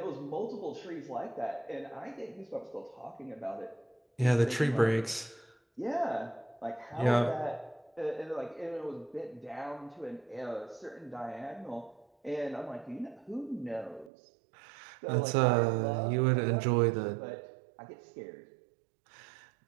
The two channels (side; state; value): left; drops out; at 14.1 s